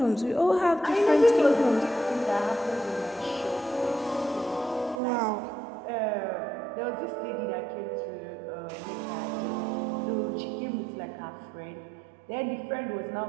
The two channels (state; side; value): drops out; left; at 5.0 s